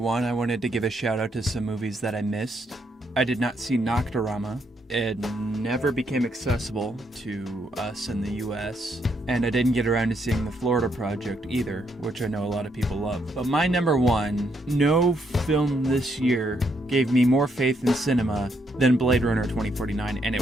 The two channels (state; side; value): normal; both; correlation 0.75